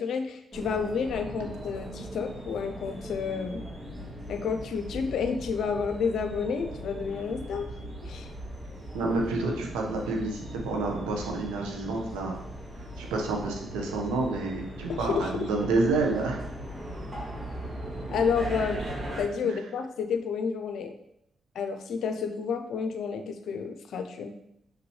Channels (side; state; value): both; normal; correlation 0.67